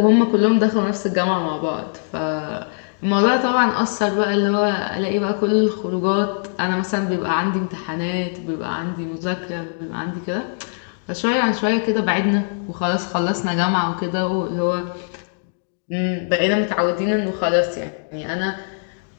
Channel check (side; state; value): right; silent; digital silence